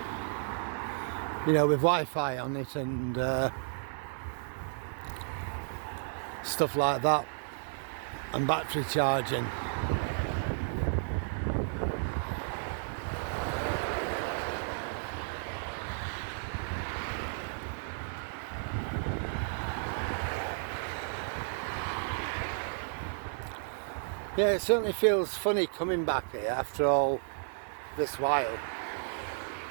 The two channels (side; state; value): left; silent; 56 dB below the other